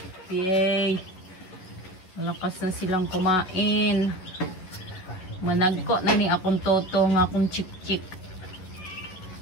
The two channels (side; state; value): right; late; 11 ms